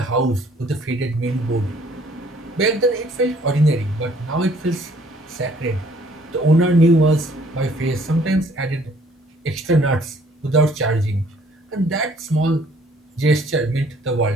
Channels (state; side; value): normal; both; correlation 0.60